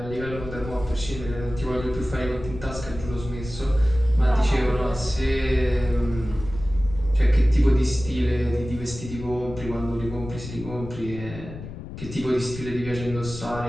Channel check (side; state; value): left; noise; rumble, 11 dB below the sound